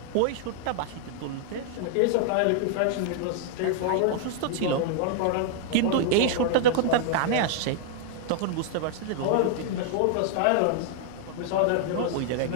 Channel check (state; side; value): different; both; correlation -0.01